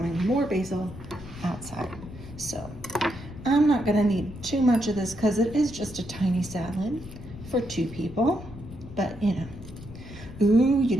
more basil outside. So I'm not gonna need too much of this because it is just a tiny salad for 2 people, but you know. Ooh, you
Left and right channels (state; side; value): noise; left; rumble, 14 dB below the sound